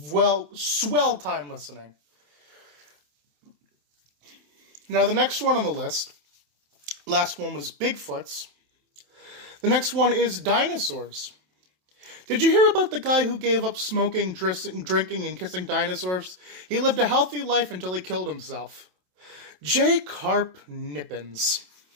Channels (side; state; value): left; late; 27 ms